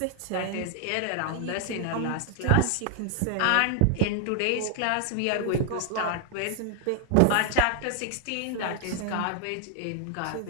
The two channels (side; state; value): both; different; correlation 0.00